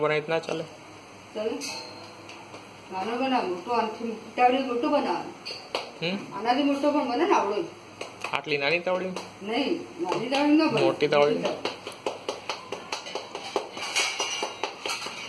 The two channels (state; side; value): identical; both; correlation 1.00